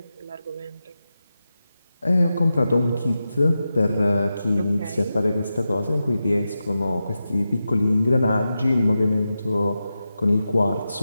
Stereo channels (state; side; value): inverted; both; correlation -0.91